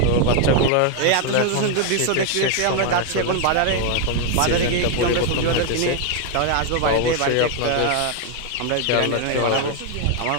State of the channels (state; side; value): different; both; correlation 0.01